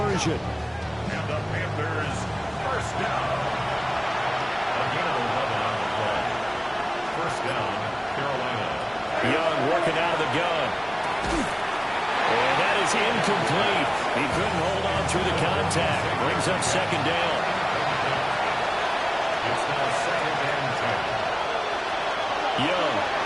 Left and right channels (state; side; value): identical; both; correlation 1.00